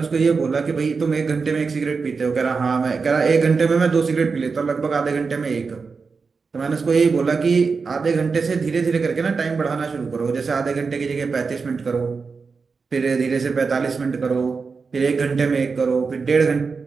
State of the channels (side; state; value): left; quieter; 4.9 dB